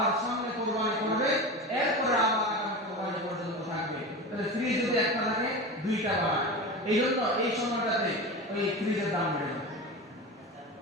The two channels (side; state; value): both; normal; correlation 0.27